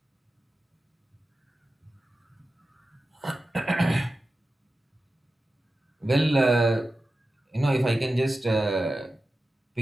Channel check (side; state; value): both; normal; correlation 0.93